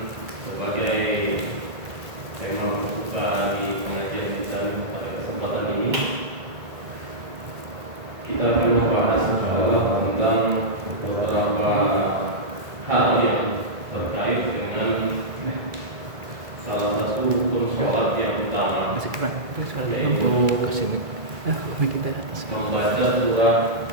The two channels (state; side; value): late; left; 2.0 ms